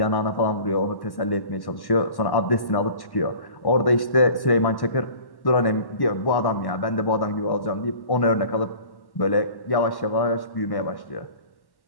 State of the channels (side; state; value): right; late; 1.1 ms